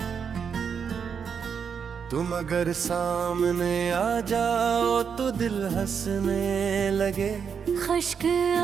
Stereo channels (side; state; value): left; quieter; 6.8 dB